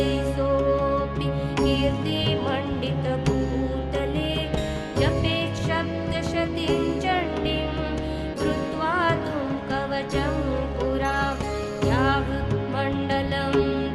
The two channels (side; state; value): both; identical; correlation 1.00